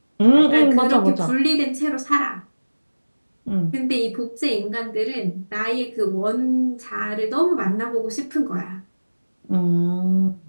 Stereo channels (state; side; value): inverted; both; correlation -1.00